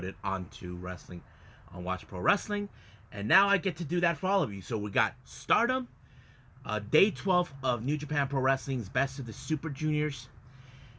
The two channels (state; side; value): identical; both; correlation 1.00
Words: onto Wrestling on Watch Pro Wrestling, and now I get to do that for all of you. So we got Stardom, Day 12 of New Japan Pro Wrestling's Best of the Super Juniors,